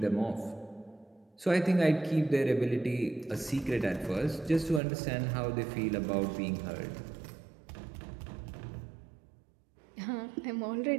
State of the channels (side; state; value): left; drops out; at 4.8 s